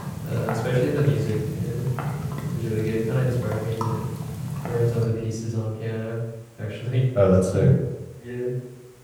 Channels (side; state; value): both; identical; correlation 1.00